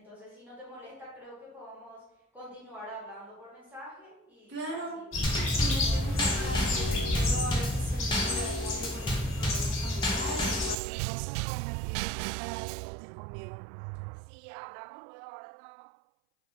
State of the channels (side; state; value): left; drops out; at 10.8 s